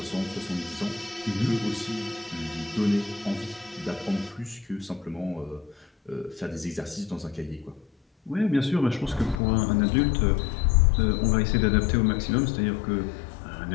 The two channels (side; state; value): right; drops out; at 9.4 s